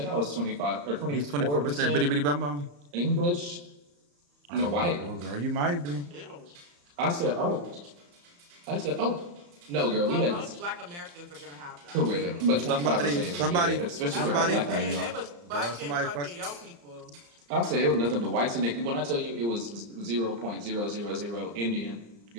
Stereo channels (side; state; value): left; late; 35 ms